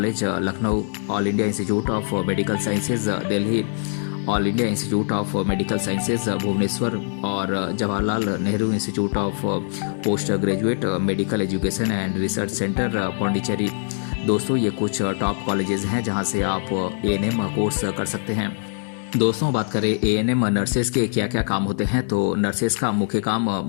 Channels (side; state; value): right; silent; 64 dB below the other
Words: Lucknow, all India institute of medical sciences Delhi, all India institute of medical sciences Bhubaneswar और Jawaharlal Nehru institute of post graduate medical education and research centre Pondicherry. दोस्तों ये कुछ top colleges हैं जहां से आप ANM course कर सकते हैं। दोस्तों बात करें एएनएम नर्सेस के क्या क्या काम होते हैं तो नर्सेस का मुख्य काम